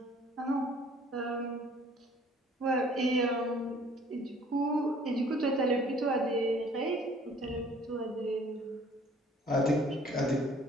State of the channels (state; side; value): normal; both; correlation 0.55